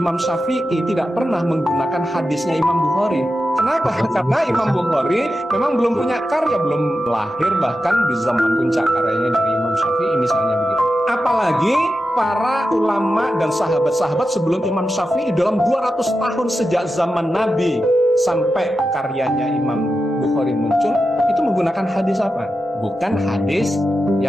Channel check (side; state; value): both; normal; correlation 0.90